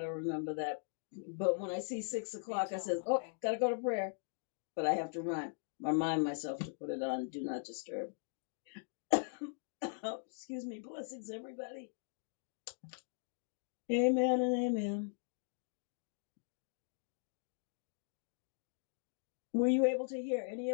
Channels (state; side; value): silent; right; digital silence